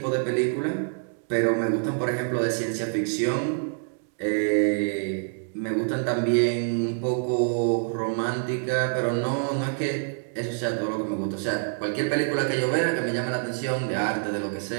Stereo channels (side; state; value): left; silent; digital silence